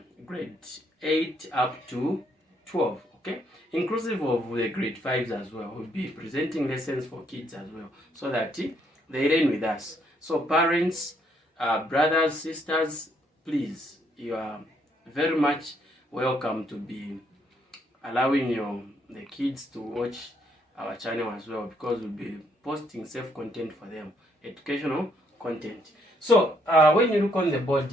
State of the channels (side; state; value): both; normal; correlation 0.71